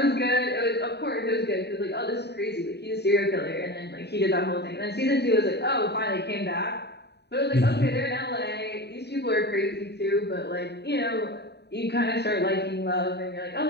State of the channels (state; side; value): late; right; 0.49 ms